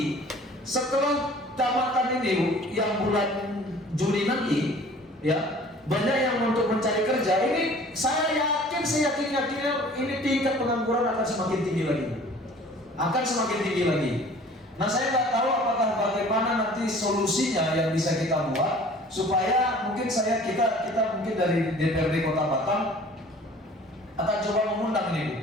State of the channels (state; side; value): normal; both; correlation 0.49